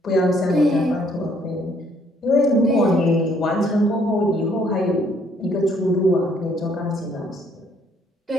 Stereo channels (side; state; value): both; normal; correlation 0.65